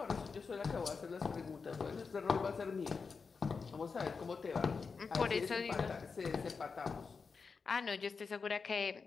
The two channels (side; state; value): right; quieter; 5.0 dB